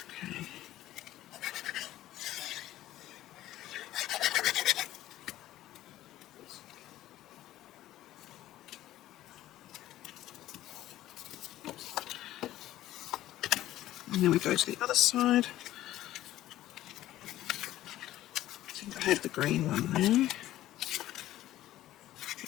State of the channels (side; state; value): right; quieter; 14.3 dB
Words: And then we go to the other side. I think I had the green one there.